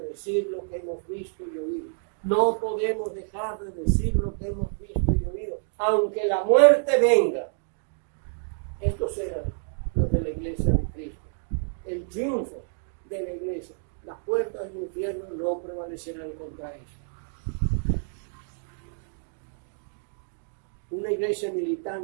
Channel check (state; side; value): silent; left; digital silence